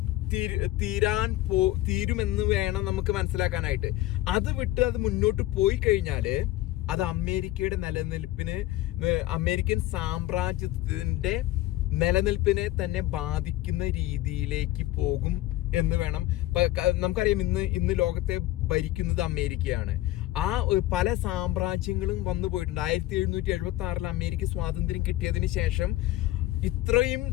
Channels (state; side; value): quieter; right; 16.1 dB